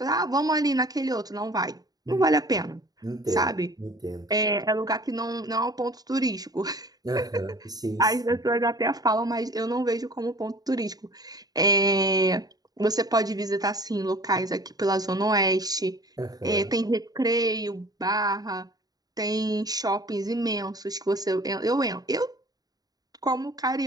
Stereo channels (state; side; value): late; left; 0.18 ms